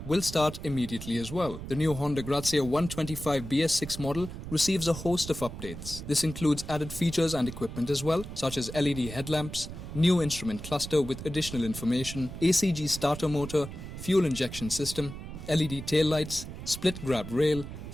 will start immediately as well. The new Honda Grazia 125 BS6 model receives a host of updates. This includes added features and equipment as well, such as LED headlamps, new instrument cluster with additional information, ACG starter motor, fuel injection system, LED taillights, split grab rail,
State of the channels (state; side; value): noise; right; rumble, 10 dB below the sound